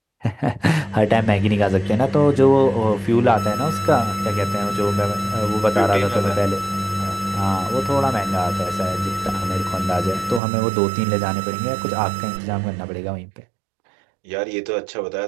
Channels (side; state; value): left; drops out; at 10.4 s